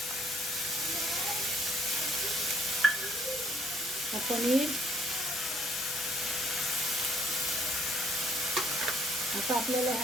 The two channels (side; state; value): both; normal; correlation 0.63